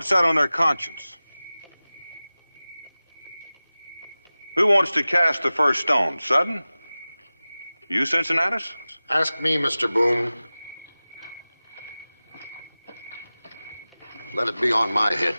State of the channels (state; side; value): inverted; both; correlation -0.97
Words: that on their conscience? Who wants to cast the first stone? Sudden? You, Cincinnatus? Ask me, Mr. Boone. Let it be on my head.